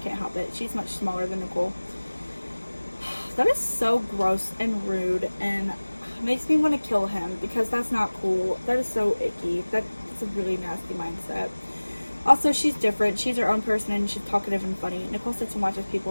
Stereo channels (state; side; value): inverted; both; correlation -1.00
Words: help it. She's much smaller than Nicole. That is so gross and rude and makes me want to kill him because that's not cool. That is so icky. That's a really nasty mindset. Also, she's different. She's her own person and she's talkative and funny. Nicole sits and watches